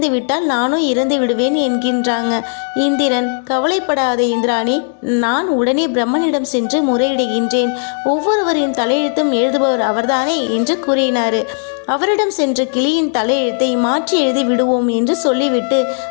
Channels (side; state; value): right; silent; digital silence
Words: விட்டால் நானும் இறந்து விடுவேன் என்கின்றாங்க. இந்திரன், கவலைப்படாத இந்திராணி, நான் உடனே பிரம்மனிடம் சென்று முறையிடுகின்றேன். ஒவ்வொருவரின் தலையெழுத்தும் எழுதுபவர் அவர்தானே என்று கூறினார். அவரிடம் சென்று கிளியின் தலையெழுத்தை மாற்றி எழுதி விடுவோம் என்று சொல்லிவிட்டு